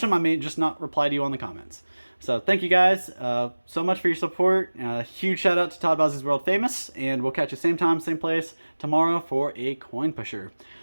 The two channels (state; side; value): inverted; both; correlation -1.00